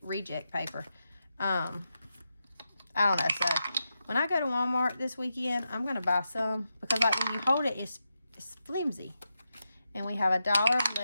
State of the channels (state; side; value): inverted; both; correlation -0.87